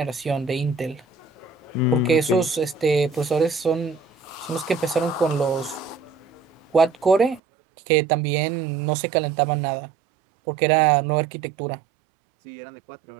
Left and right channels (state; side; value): drops out; left; at 7.4 s